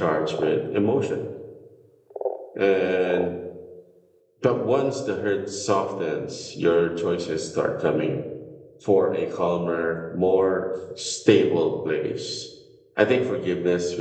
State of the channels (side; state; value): both; identical; correlation 1.00